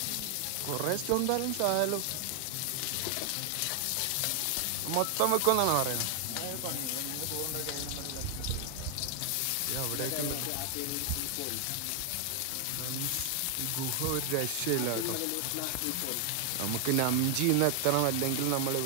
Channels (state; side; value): different; both; correlation 0.00